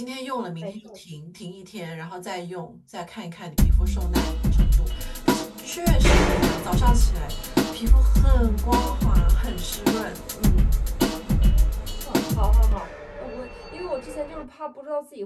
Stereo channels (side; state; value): both; identical; correlation 1.00